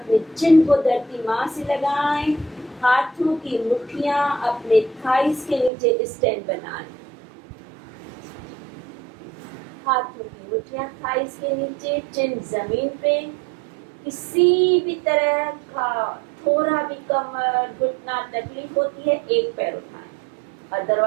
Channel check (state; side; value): drops out; left; at 5.7 s